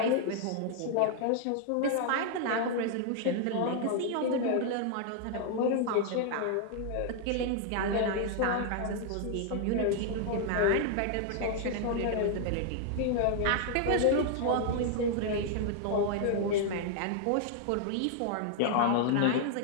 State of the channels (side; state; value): both; different; correlation 0.00